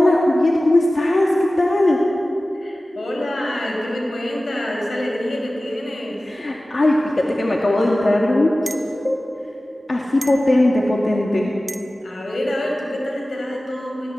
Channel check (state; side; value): normal; both; correlation 0.96